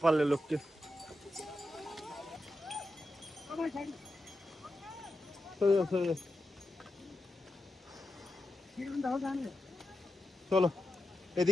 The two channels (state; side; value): normal; both; correlation 0.89